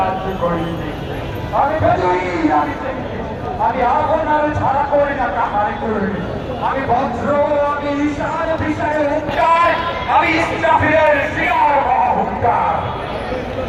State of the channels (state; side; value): identical; both; correlation 1.00